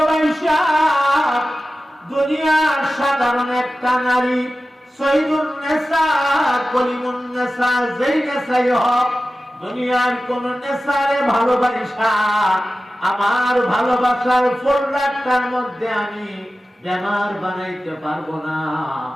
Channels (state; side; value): normal; both; correlation 0.95